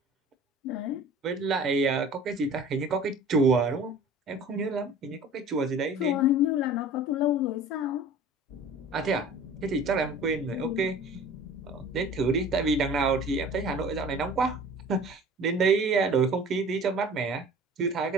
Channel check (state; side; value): normal; both; correlation 0.44